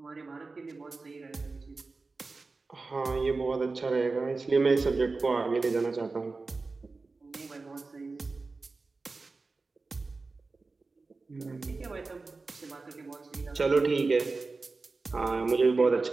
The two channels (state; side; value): quieter; left; 3.8 dB